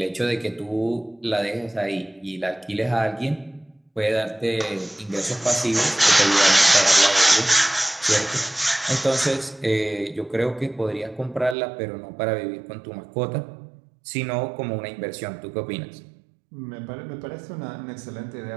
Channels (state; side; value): drops out; left; at 11.6 s